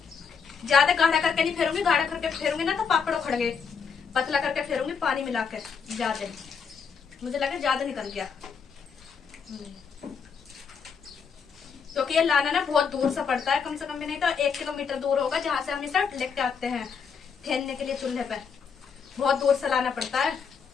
ज्यादा गाढ़ा करके नहीं फेरूंगी, गाढ़ा करके फेरूंगी ना तो पापड़ उखड़ गए। पतला करके फेरूंगी पानी मिला के। ज्यादा, मुझे लगा ज्यादा निकल गया, क्योंकि ये लाना ना बहुत दूर से पड़ता है, कम से कम भी नहीं तो 1 किलोमीटर दूर होगा, जहां से हम इसे लेके आते हैं फेरने के लिए चूल्हे पे। बहुत दूर से लाना पड़ता है।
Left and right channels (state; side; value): quieter; right; 6.1 dB